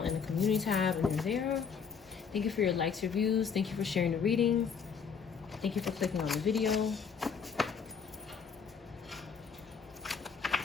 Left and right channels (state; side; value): quieter; right; 6.2 dB